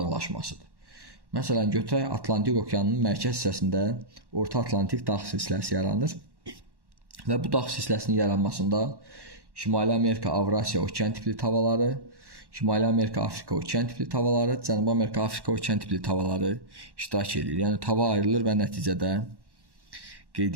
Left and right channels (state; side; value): late; left; 1.1 ms